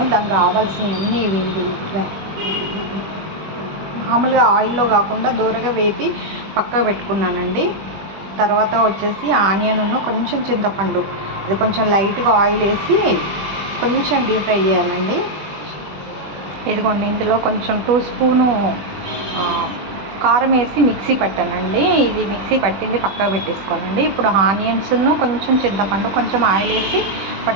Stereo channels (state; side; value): late; left; 20 ms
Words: దానికి కావాల్సినవన్నీ మామూలుగా ఆయిల్లో కాకుండా దూరగా వేపి పక్కకు పెట్టుకున్నానండి. తర్వాత వచ్చేసి ఆనియన్, కొంచెం చింతపండు, ఇది కొంచెం లైట్గా ఆయిల్ వేసి కొంచెం డీప్ ఫ్రై చేయాలండి. ఇదిగోండి, ఇందులో కొంచెం 2 స్పూను కారం వేసి మిక్సీ పట్టానండి. ఇది మిక్సీ పట్టింది పక్కకు పెట్టేసుకోవాలండి. ఇప్పుడు ఆనియన్స్, కొంచెం చింతపండు, కొంచెం ఆయిల్ వేసి